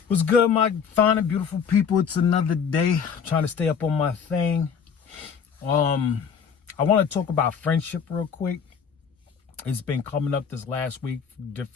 What's good, my fine and beautiful people? It's another day. I'm trying to stay up on my thing. I want to talk about friendship real quick. It's been coming up this last week,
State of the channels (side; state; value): right; quieter; 6.8 dB